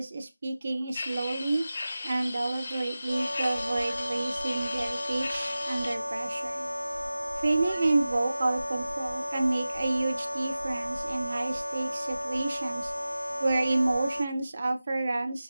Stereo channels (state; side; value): inverted; both; correlation -0.96